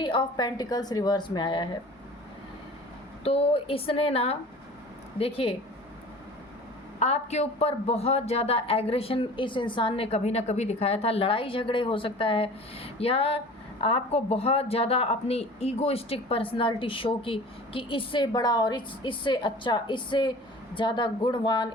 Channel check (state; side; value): normal; both; correlation 0.42